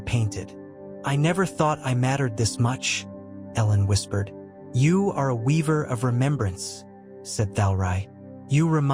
painted. "I never thought I mattered this much," Ellen whispered. "You are a weaver of remembrance," said Thalrai. "You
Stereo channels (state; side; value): identical; both; correlation 1.00